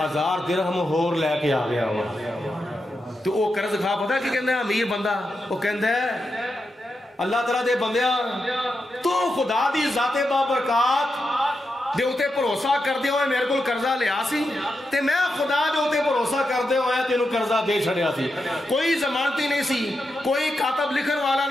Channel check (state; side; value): normal; both; correlation 0.87